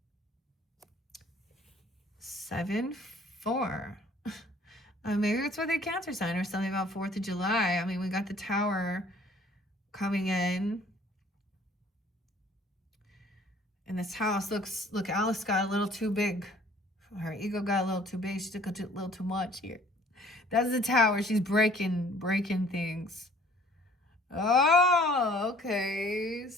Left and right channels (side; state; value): both; normal; correlation 0.55